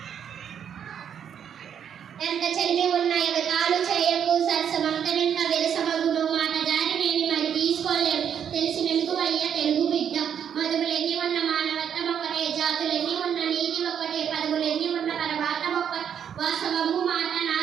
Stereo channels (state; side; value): quieter; left; 8.5 dB